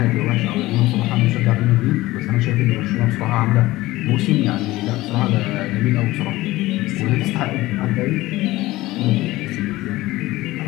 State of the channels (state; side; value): quieter; right; 18.1 dB